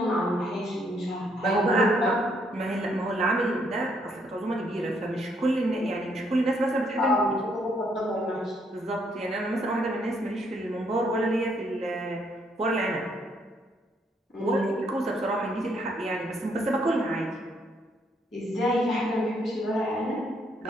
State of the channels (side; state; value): both; normal; correlation 0.71